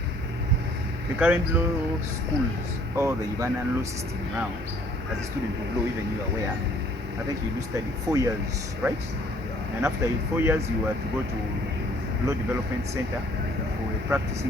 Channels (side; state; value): both; normal; correlation 0.59